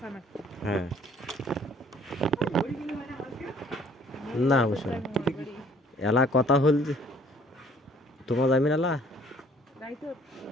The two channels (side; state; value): both; normal; correlation 0.58